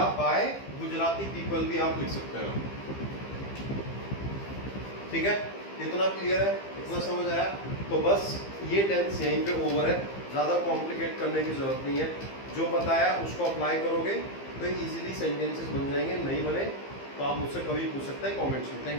बाय गुजराती पीपल भी आप लिख सकते हैं। ठीक है। इतना क्लियर है, इतना समझ आया। तो बस ये टेंस यहीं पे ओवर है, ज़्यादा कॉम्प्लिकेट करने की जरूरत नहीं है। जो बताया उसको अप्लाई करोगे तो इजीली सेंटेंसेस बन जाएंगे, नहीं बने तो आप मुझसे कभी पूछ सकते हैं कमेंट्स में।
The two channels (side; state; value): right; late; 15 ms